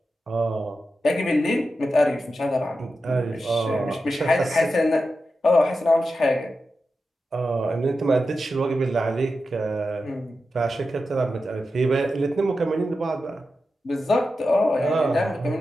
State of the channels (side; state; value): both; normal; correlation 0.90